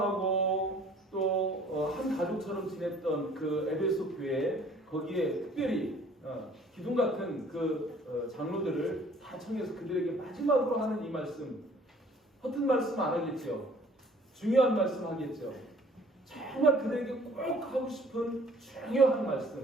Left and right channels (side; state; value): both; normal; correlation 0.54